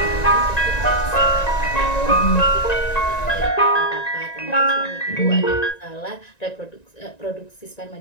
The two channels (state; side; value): late; right; 1.9 ms